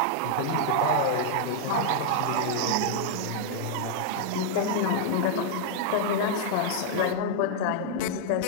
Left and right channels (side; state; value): both; different; correlation -0.01